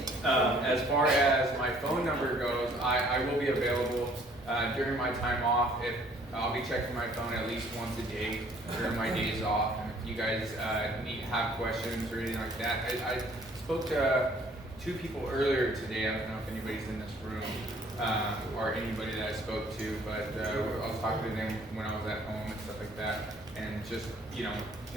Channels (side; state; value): right; noise; rumble, 22 dB below the sound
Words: As far as my phone number goes, I will be available during my time off. I'll be checking my phone at least once a day during my days off. And if you guys have questions or anything like that, I spoke to two people earlier today. I don't know if anybody's in this room or anybody that I spoke to, but I was talking to them when I was at home and stuff like that, and just